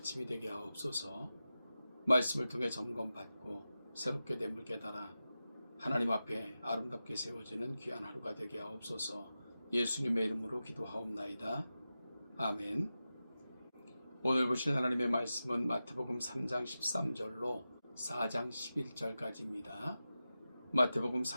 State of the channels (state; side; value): inverted; both; correlation -0.93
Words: 되게 하옵소서. 말씀을 통해 점검받고 새롭게 됨을 깨달아 하나님 앞에 아름답게 세워지는 귀한 하루가 되게 하옵소서. 예수님의 이름으로 기도하옵나이다. 아멘. 오늘 보실 하나님의 말씀은 마태복음 3장 13절로 4장 11절까지입니다. 마태복음